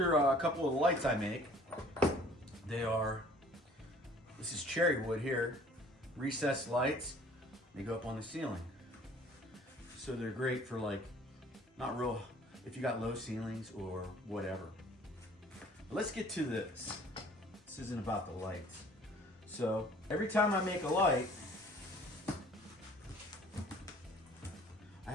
a couple of the lights I make. This is cherry wood here, recessed lights. They go up on the ceiling. So they're great for if you got low ceilings or whatever. But let's get to this. This isn't about the lights. So every time I make a light, I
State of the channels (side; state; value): both; normal; correlation 0.53